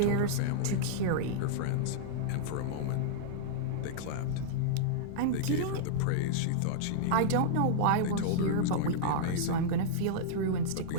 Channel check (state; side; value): different; both; correlation -0.02